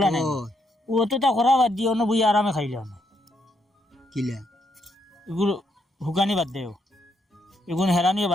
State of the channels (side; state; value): both; normal; correlation 0.76